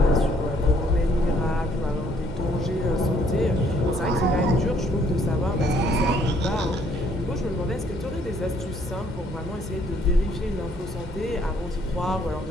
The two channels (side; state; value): both; normal; correlation 0.65